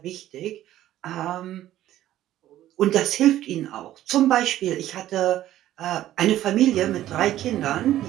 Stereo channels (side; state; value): left; quieter; 13.3 dB